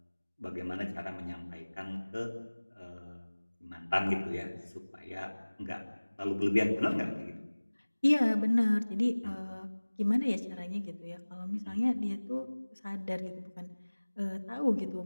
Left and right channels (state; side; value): inverted; both; correlation -1.00